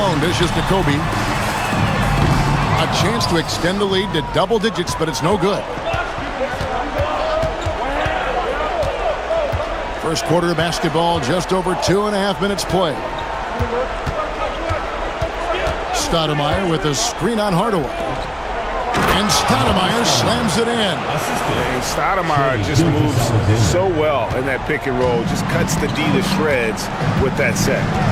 dishes to Kobe. A chance to extend the lead to double digits, but it's no good. First quarter of basketball, just over 2.5 minutes played. Stoudemire with a screen on Hardaway. And Stoudemire slams it in. Stoudemire just moves so well in that pick and roll. Just cuts the D to shreds with that set.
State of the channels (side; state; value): both; identical; correlation 1.00